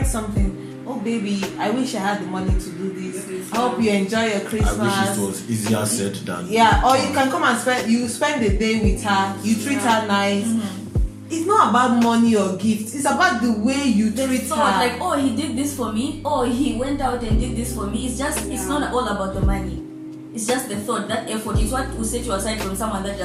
something, oh baby, I wish I had the money to do this. I hope you enjoy your Christmas. I wish it was easier said than Yeah, or you can come and spend the day with her, you treat her nice. It's not about money or gifts, it's about the way you treat So her. like, oh, he did this for me, oh, he went out and did this for me. It's not all about the money. It's just the thought, that effort is what will set you aside from someone that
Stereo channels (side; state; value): both; identical; correlation 1.00